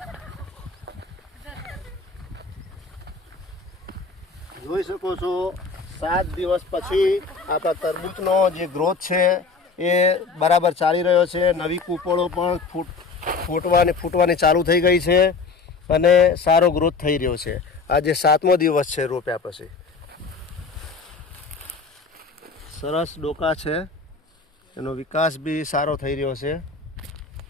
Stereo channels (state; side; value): quieter; right; 4.6 dB